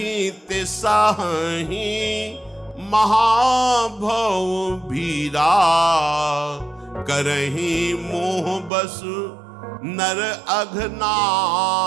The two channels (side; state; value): left; drops out; at 8.7 s